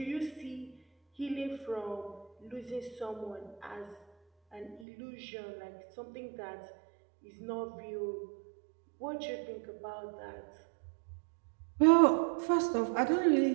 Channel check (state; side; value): drops out; left; at 4.9 s